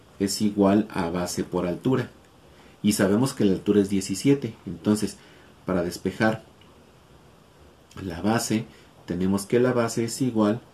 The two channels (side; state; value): both; identical; correlation 1.00